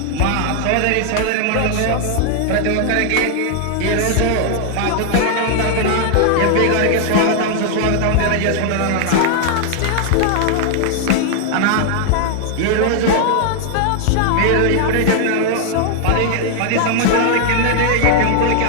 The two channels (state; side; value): different; both; correlation 0.00